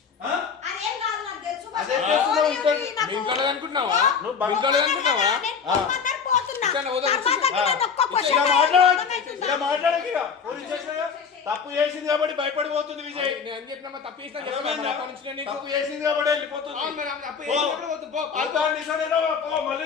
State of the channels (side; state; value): right; quieter; 6.2 dB